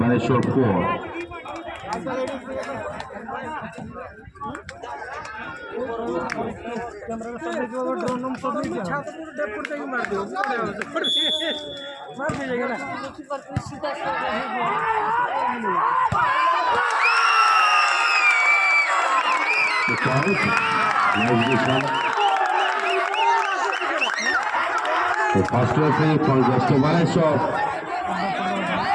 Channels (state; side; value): identical; both; correlation 1.00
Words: 4. The first referee for West Baleshwar